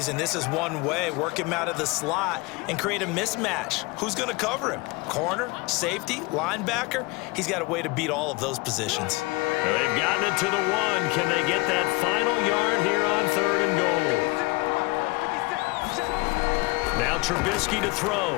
and this is one way. Work him out of the slot and create a mismatch. Who's going to cover him? Corner, safety, linebacker? He's got a way to beat all of those positions. Well, they've gotten it to the 1. Can they get that final yard here on 3rd and goal? Now Trubisky to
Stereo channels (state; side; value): quieter; right; 24.5 dB